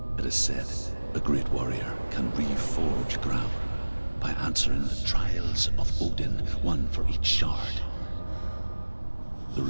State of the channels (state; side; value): inverted; both; correlation -1.00